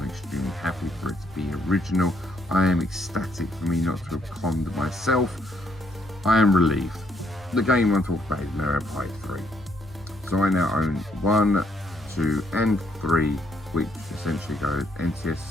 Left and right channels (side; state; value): both; normal; correlation 0.71